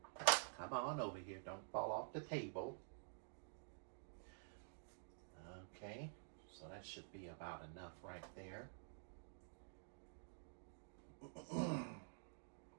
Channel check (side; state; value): left; silent; digital silence